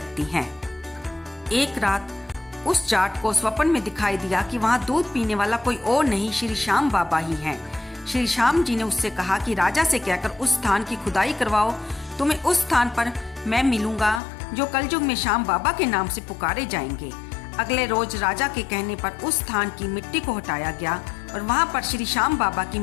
हैं। एक रात उस जाट को स्वप्न में दिखाई दिया कि वहां दूध पीने वाला कोई और नहीं, श्री श्याम बाबा ही हैं। श्री श्याम जी ने उससे कहा कि राजा से कहकर उस स्थान की खुदाई करवाओ, तुम्हें उस स्थान पर मैं मिलूंगा जो कलयुग में श्याम बाबा के नाम से पुकारे जाएंगे। अगले रोज राजा के कहने पर उस स्थान की मिट्टी को हटाया गया और वहां पर श्री श्याम बाबा की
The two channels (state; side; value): drops out; right; at 14.2 s